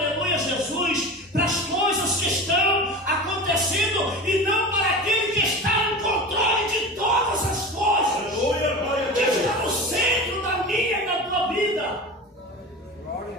Jesus, para as coisas que estão acontecendo e não para aquele que está no controle de todas as coisas. Aleluia, que está no centro da minha e da tua vida.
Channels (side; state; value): both; normal; correlation 0.31